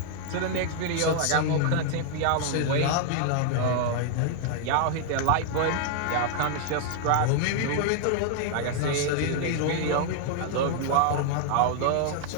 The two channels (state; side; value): different; both; correlation 0.00